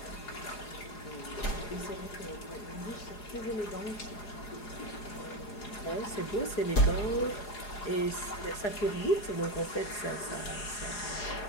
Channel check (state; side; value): late; right; 4.8 ms